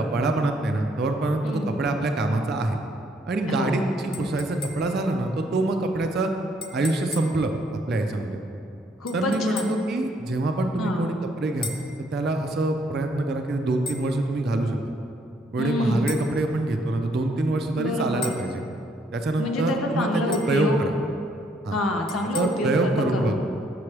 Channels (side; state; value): both; normal; correlation 0.69